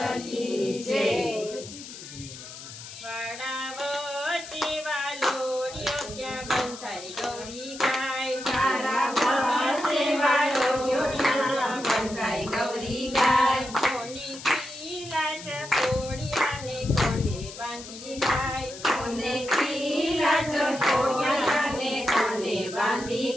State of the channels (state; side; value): noise; left; hiss, 13 dB below the sound